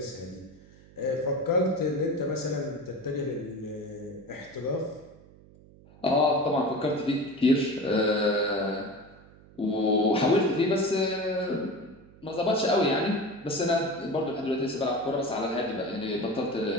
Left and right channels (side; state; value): right; noise; hum, 23 dB below the sound